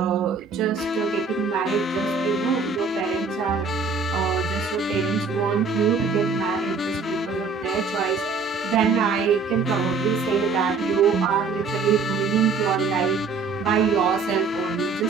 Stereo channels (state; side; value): quieter; left; 4.6 dB